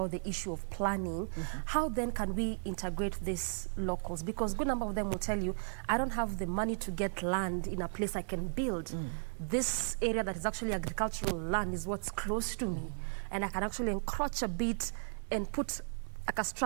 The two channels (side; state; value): left; silent; 54 dB below the other